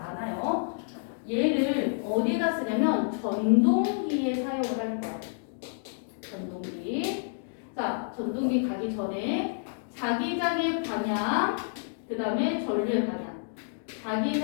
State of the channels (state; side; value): silent; right; digital silence